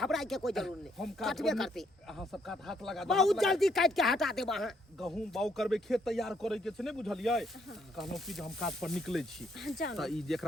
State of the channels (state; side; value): normal; both; correlation 0.71